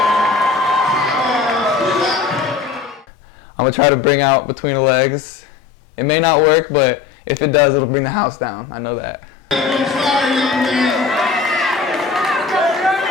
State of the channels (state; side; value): quieter; right; 5.6 dB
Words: I'm gonna try to bring out between the legs. It may not work, but if it does, it'll bring the house down. I know that.